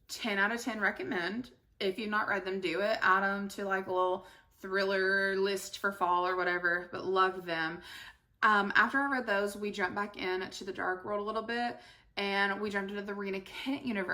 10 out of 10 recommend. If you've not read them, do it. Add them to like a little thriller list for fall or whatever, but loved them. After I read those, we jumped back into the Dark World a little bit, and we jumped into the Rena Kent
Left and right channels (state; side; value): identical; both; correlation 1.00